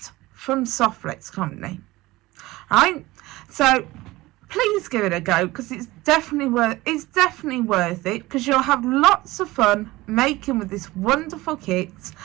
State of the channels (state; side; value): quieter; left; 19.3 dB